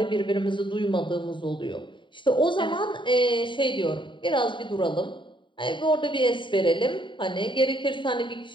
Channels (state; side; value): late; right; 0.23 ms